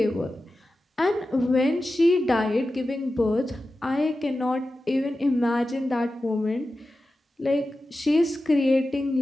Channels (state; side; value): normal; both; correlation 0.93